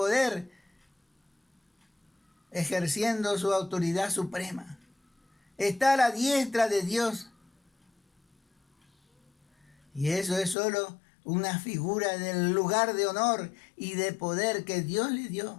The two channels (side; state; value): right; drops out; at 10.6 s